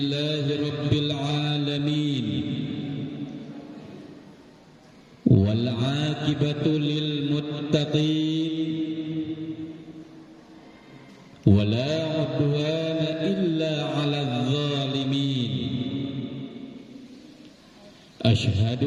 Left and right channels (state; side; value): identical; both; correlation 1.00